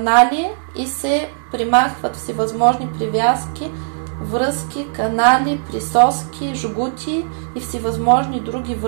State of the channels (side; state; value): left; silent; 67 dB below the other